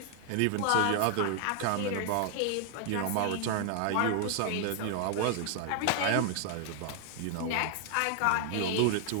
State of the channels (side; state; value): both; different; correlation 0.00